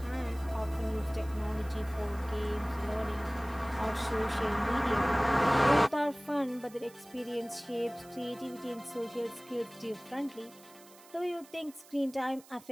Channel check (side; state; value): right; noise; hiss, 23 dB below the sound